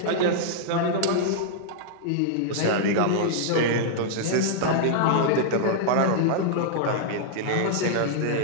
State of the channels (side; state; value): both; different; correlation -0.01